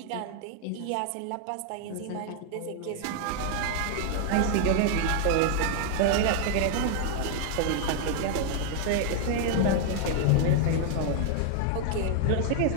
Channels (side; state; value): both; different; correlation 0.00